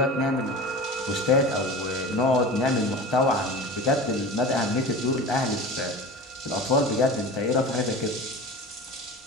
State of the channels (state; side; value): normal; both; correlation 0.33